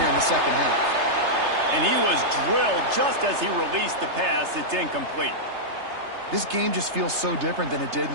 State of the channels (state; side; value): late; left; 3.3 ms